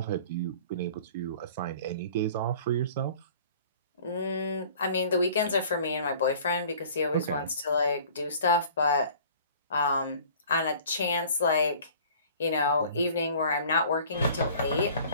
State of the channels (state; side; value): inverted; both; correlation -0.49